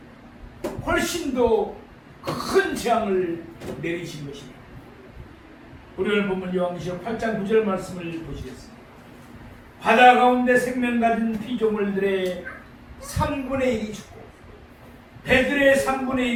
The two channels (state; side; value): identical; both; correlation 1.00